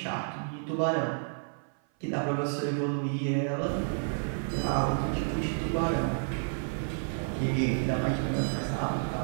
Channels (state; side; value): silent; left; 56 dB below the other